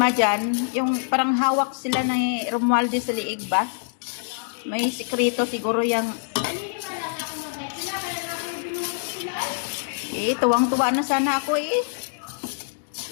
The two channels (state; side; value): silent; right; digital silence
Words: dyan, yung parang hawak sila ni Romualdez sa liig ba? May sikreto siguro yung tuwang-tuwa na sana ako eh.